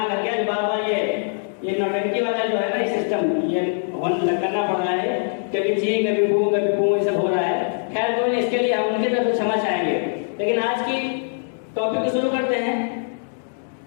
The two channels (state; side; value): silent; right; digital silence